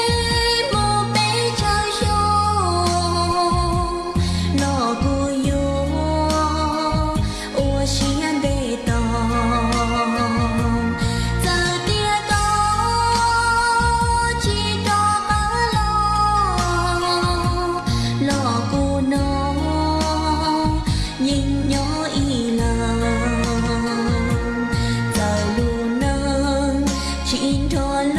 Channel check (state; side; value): identical; both; correlation 1.00